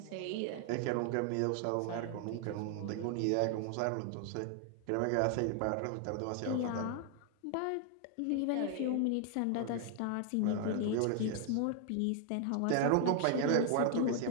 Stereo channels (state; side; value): different; both; correlation 0.00